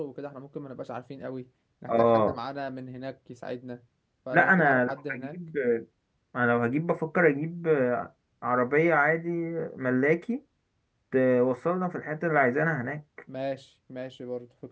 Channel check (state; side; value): identical; both; correlation 1.00